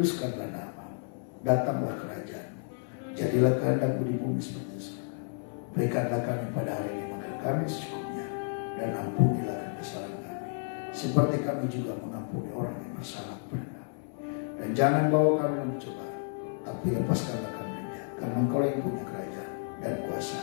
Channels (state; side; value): silent; right; 57 dB below the other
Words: nama, datanglah kerajaan, jadilah kehendak-Mu di bumi seperti di surga. Berikanlah kami pada hari ini makan kami secukupnya, dan ampunilah kami kesalahan kami, seperti kami juga mengampuni orang yang bersalah kepada kami. Dan jangan bawa kami dalam pencobaan, tapi lepaskanlah kami dari jahat, karena Engkau yang punya kerajaan dan kuasa